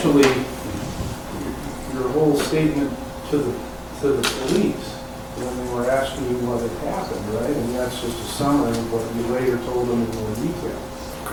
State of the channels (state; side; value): identical; both; correlation 1.00